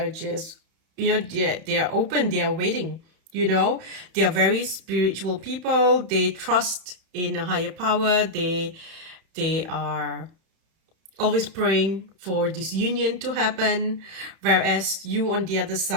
just, they are open. They are waiting. They are very spiritual people. They trust in a higher power. They are always praying for this union to happen, whereas you on the other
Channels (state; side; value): late; left; 31 ms